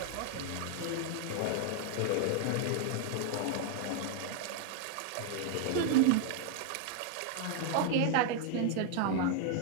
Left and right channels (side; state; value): both; different; correlation 0.00